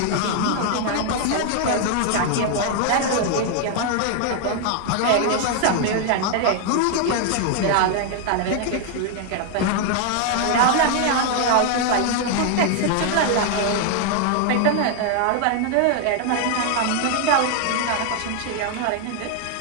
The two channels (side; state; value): both; different; correlation 0.00